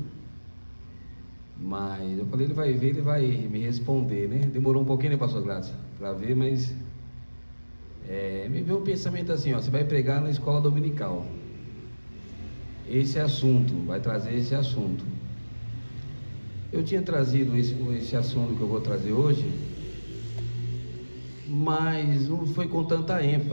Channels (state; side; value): inverted; both; correlation -1.00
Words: mas eu falei, ele vai ver, ele vai me responder, né? Demorou um pouquinho, né, pastor Gladson, para ver, mas me veio um pensamento assim, ó, você vai pregar na escola dominical. Esse assunto, vai trazer esse assunto. Eu tinha trazido esse assunto que eu vou trazer hoje, mas não foi com tanta